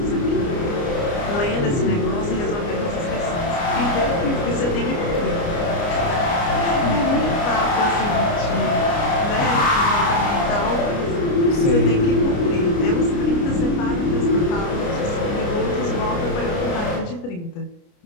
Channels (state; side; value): late; right; 29 ms